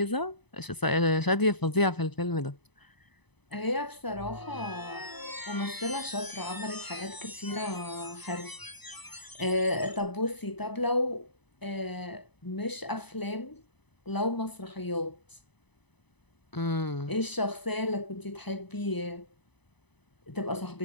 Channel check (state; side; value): late; right; 0.99 ms